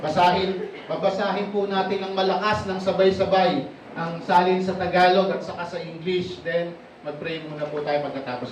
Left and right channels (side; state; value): both; identical; correlation 1.00